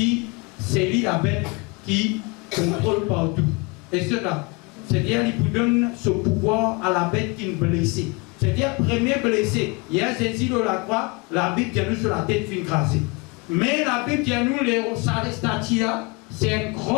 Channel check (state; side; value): quieter; right; 27.6 dB